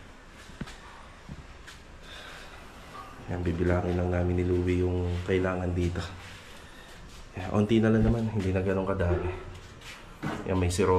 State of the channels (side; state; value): both; identical; correlation 1.00